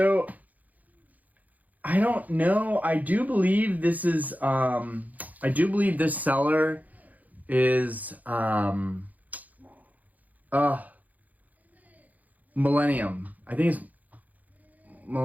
I don't know. I do believe this is I do believe this seller is Millennium. I think it's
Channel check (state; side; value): late; left; 0.079 ms